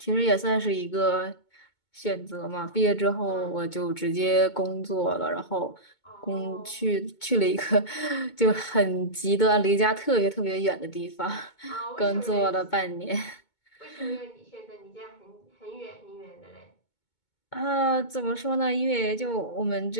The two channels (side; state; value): right; late; 2.2 ms